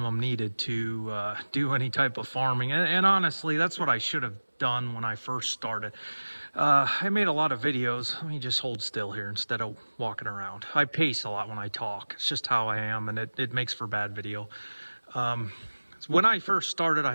needed to do any type of farming. And honestly, that's what I should have done when I first started. I made a lot of videos. Let me just hold still here instead of walking around. I pace a lot when I talk. It's just how I am, and it makes for bad video. when I first started, I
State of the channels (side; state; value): both; inverted; correlation -1.00